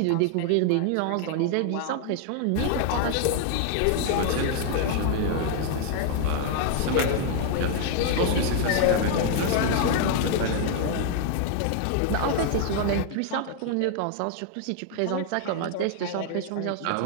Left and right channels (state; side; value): different; both; correlation 0.00